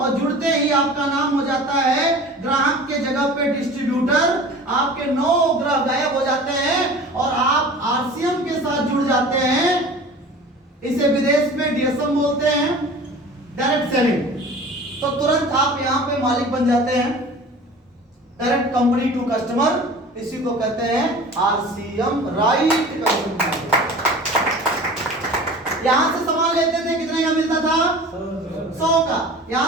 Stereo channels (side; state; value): both; normal; correlation 0.40